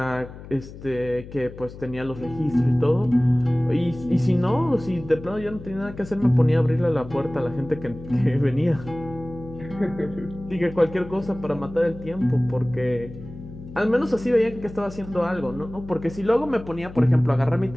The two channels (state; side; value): noise; left; hum, 15 dB below the sound